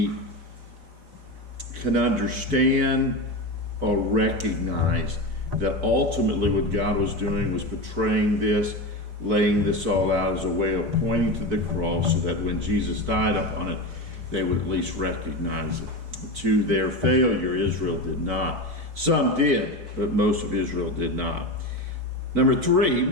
can understand or recognize that ultimately what God was doing was portraying this, laying this all out as a way of pointing to the cross so that when Jesus died upon it, they would at least recognize it. To their failure, Israel did not. Some did, but most of Israel did not. Number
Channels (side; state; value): left; late; 4.5 ms